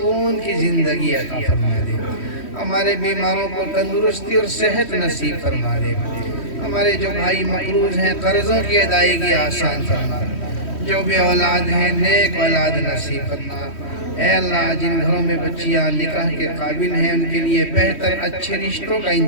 کی زندگی عطا فرما دے، ہمارے بیماروں کو تندرستی اور صحت نصیب فرما دے، ہمارے جو بھائی مقروض ہیں قرضوں کی ادائیگی آسان فرما، جو بھی اولاد ہیں نیک اولاد نصیب فرما۔ اے اللہ جن گھروں میں بچیاں نکاح کے قابل ہیں ان کے لیے بہتر اچھے رشتوں کا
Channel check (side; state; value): right; late; 3.1 ms